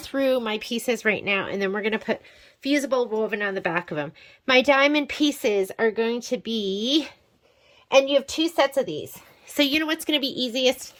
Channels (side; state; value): both; identical; correlation 1.00